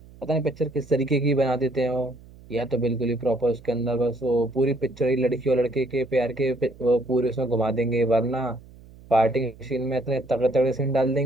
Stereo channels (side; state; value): right; noise; hum, 22 dB below the sound